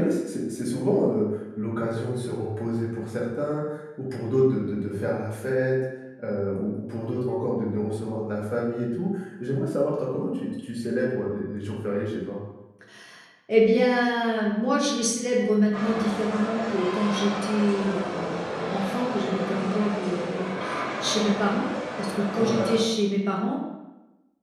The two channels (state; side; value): identical; both; correlation 1.00